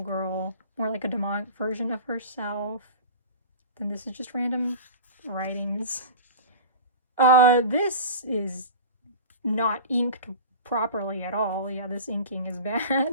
girl, more like a demonic version of herself. Then this is just random writings. This is not inked properly at all. Yeah, this inking is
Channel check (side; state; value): both; inverted; correlation -0.33